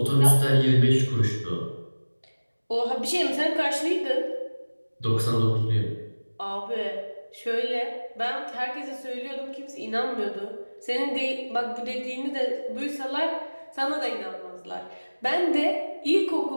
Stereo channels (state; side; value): inverted; both; correlation -1.00